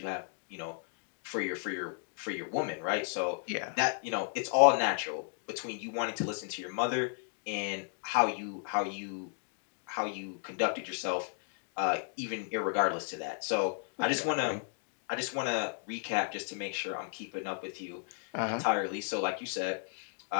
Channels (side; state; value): right; silent; 55 dB below the other